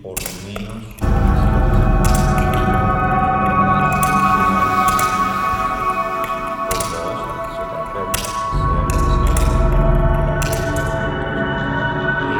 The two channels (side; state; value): both; identical; correlation 1.00